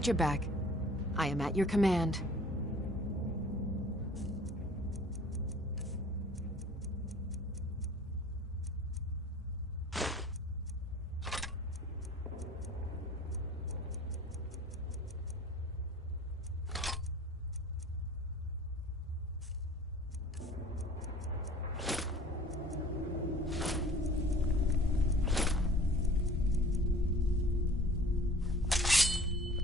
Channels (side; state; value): both; normal; correlation 0.47